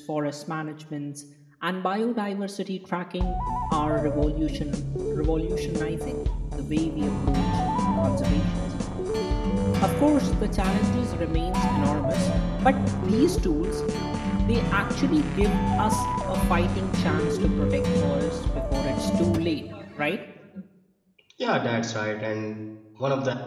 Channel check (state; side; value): identical; both; correlation 1.00